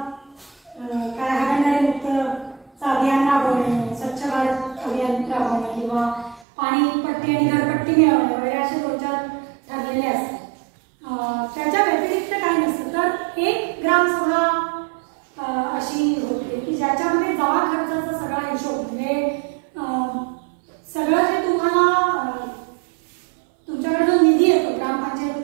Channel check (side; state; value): left; drops out; at 6.5 s